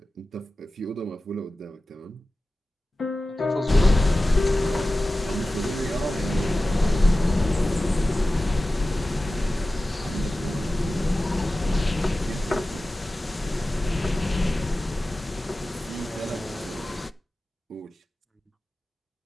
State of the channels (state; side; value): normal; both; correlation 0.95